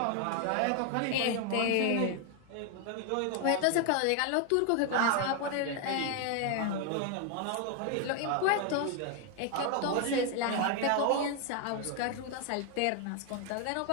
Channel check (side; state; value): both; different; correlation 0.01